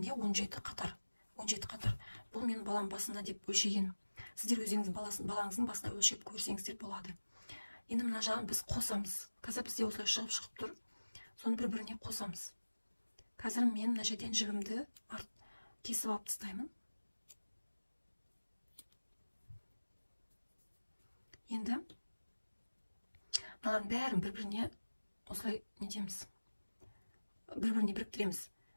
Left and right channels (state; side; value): inverted; both; correlation -1.00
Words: 17 қатар. 17 қатар. Бұл менің балам басында деп өлшеген. Сіздер өзіңіздің балаңыздың басына өлшеп көрсеңіздер болады. Енді мына жағын біз қосамыз. Қазір бізде осылай шығып тұр. Соны бір-біріне қосамыз. Қазір мен мына жерден жібімді кесіп алып тастаймын. Енді мыналардың бәрін бір-біріне осылай нетеміз. Бір-біріне біріктіреміз.